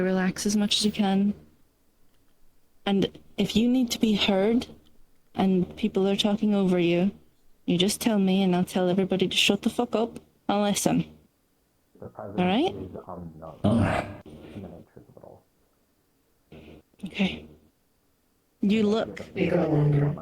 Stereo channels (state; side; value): identical; both; correlation 1.00